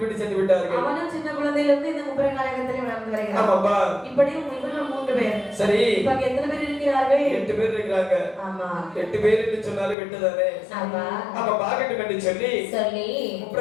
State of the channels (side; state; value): right; drops out; at 10.0 s